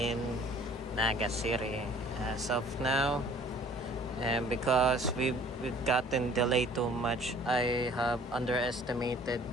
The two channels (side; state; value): both; normal; correlation 0.52